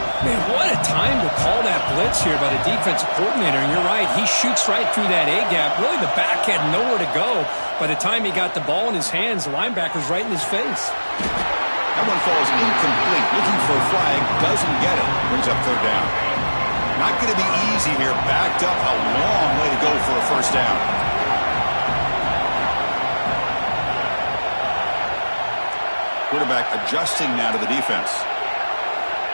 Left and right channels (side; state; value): both; inverted; correlation -1.00